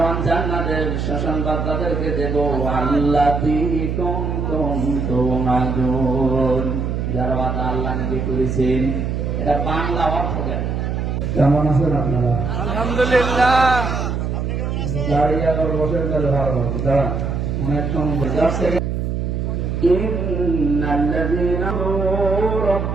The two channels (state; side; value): noise; right; hum, 1 dB below the sound